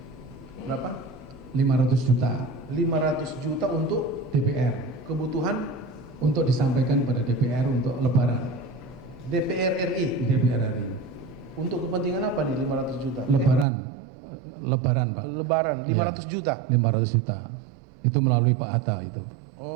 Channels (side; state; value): left; drops out; at 13.7 s